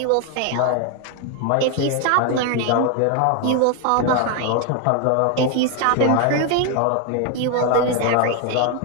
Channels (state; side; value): different; both; correlation 0.01